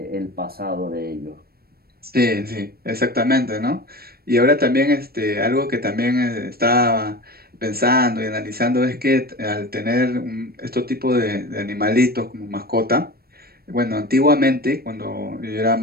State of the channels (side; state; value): left; late; 0.45 ms